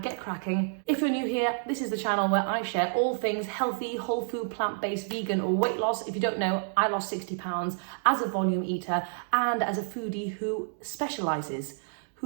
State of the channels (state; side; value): silent; left; digital silence